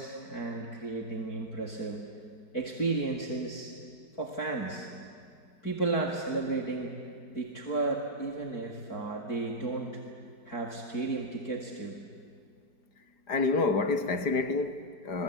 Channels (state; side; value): late; right; 4.9 ms